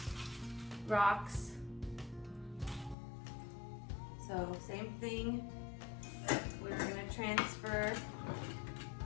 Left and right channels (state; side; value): drops out; right; at 3.0 s